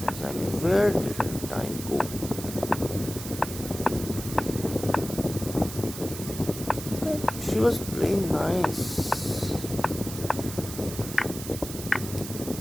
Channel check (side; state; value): right; noise; hiss, 10 dB below the sound